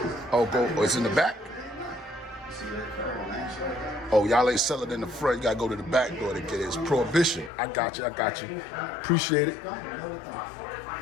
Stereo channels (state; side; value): drops out; right; at 7.5 s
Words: Oh, it's in the back? Oh, y'all ain't selling in the front. You gotta go to the back door to get it. It's Prohibition. I got you. Appreciate it.